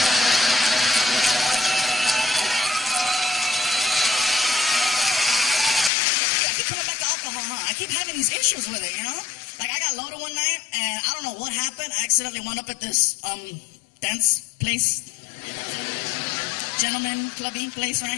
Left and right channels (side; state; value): right; drops out; at 5.9 s